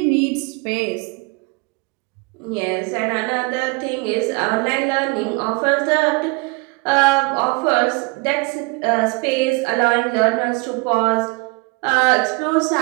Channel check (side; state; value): left; quieter; 27.8 dB